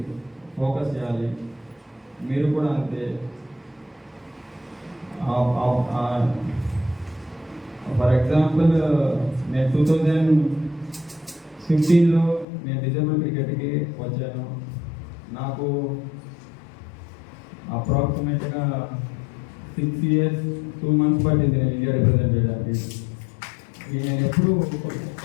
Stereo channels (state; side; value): drops out; right; at 12.5 s